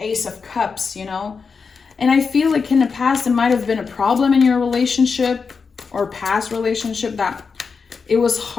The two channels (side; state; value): right; quieter; 5.2 dB